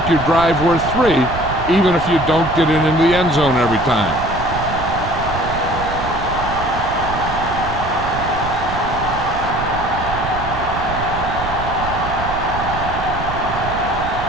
your drive worth 3, even if you don't get it into the end zone every time.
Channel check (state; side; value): noise; right; rumble, 8 dB below the sound